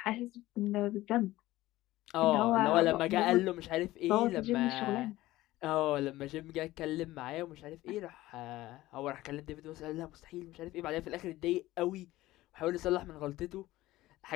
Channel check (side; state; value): right; quieter; 16.9 dB